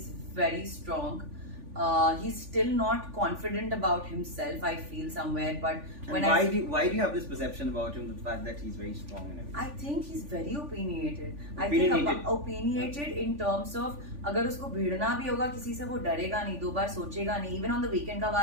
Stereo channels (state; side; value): late; left; 3.5 ms